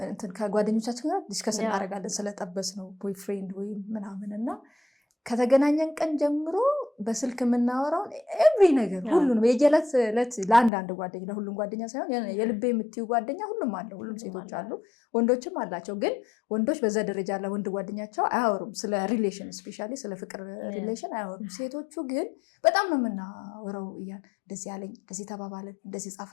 ከጓደኞቻችን ጋር ዲስከስ እናደርጋለን ስለጠበስ ነው ቦይፍሬንድ ወይ ምናምን እና ከተገናኘን ቀን ጀምሮ በስልክ የምናወራውን ኤቭሪ ነገር ሁሉንም የጀለት ለት ለአንድ ጓደኛ ለሁሉም ጓደኛ ሳይሆን የልቤ የምትዩ ጓደኛ ሁሉም አለ። ሁሉም ሴቶች አሉ ወንዶችም አላቸው። ግን ወንዶች በዛ ደረጃ ለወንድ ጓደኛቸው አያወሩም ስለ ሪሌሽን ስፔሻሊ ስለ ፍቅር ሪሌሽን አያወሩም። ሴቶቹ ግን በጣም ነው የምናወራው። እንደዚህ ያለኝ እንደዚህ ተባባለን እንደዚህ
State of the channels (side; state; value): right; drops out; at 10.7 s